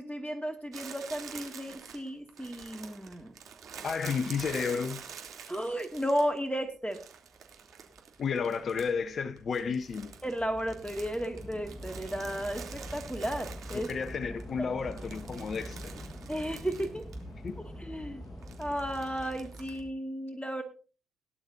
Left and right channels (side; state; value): both; normal; correlation 0.87